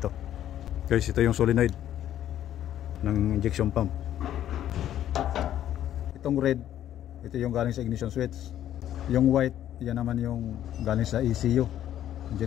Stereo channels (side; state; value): right; quieter; 11.5 dB